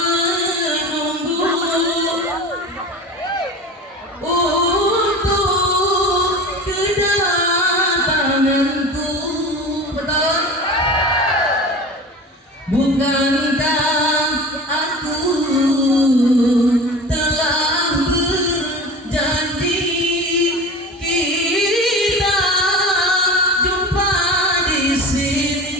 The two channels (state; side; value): normal; both; correlation 0.34